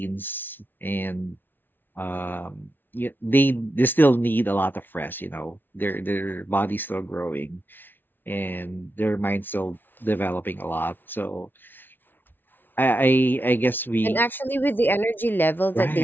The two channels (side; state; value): right; late; 0.095 ms